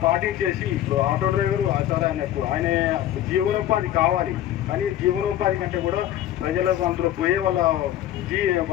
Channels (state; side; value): quieter; right; 12.4 dB